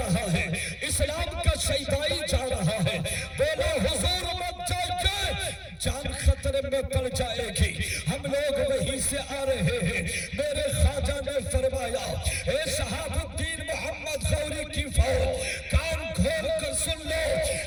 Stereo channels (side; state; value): both; identical; correlation 1.00